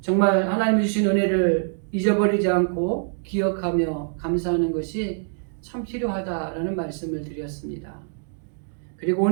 정말 하나님이 주신 은혜를 잊어버리지 않고 기억하며 감사하는 것이 참 필요하다라는 말씀을 드렸습니다. 그리고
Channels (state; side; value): silent; left; digital silence